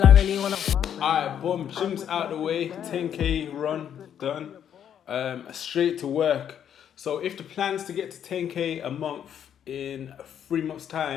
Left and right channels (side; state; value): right; quieter; 9.2 dB